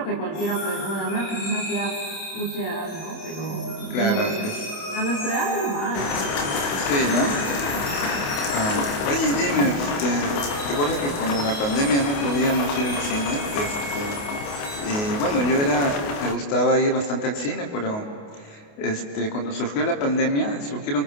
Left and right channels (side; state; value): right; late; 28 ms